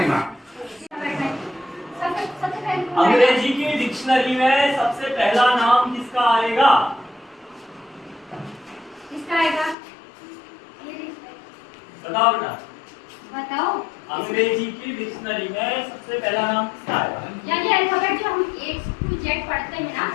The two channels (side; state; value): right; drops out; at 9.8 s